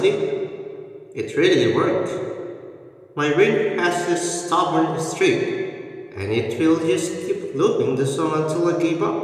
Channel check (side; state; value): both; identical; correlation 1.00